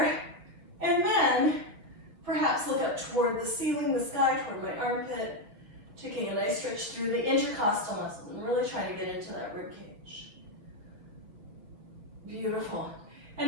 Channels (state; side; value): late; left; 6.5 ms